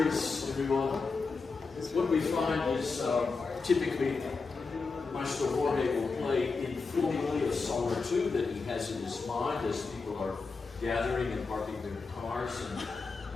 everyone. What we find is typically Maestro Jorge will play informally a song or two that he has in his mind as people are gathering and parking their cars and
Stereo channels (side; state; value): right; quieter; 4.4 dB